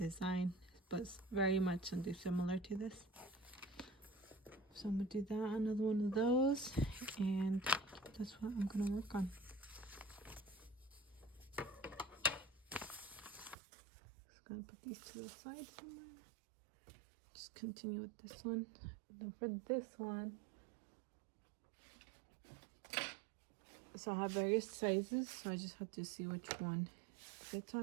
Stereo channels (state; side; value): drops out; left; at 13.6 s